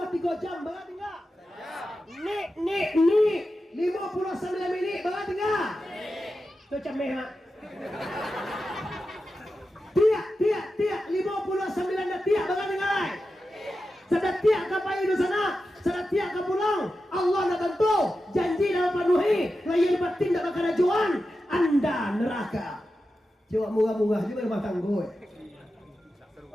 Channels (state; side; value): normal; both; correlation 0.91